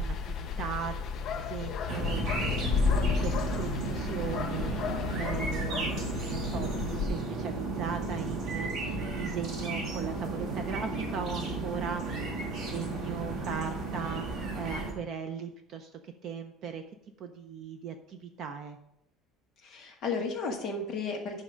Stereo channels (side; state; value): both; normal; correlation 0.44